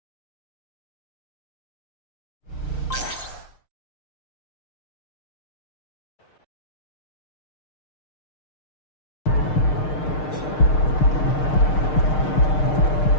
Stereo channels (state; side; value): late; right; 6.6 ms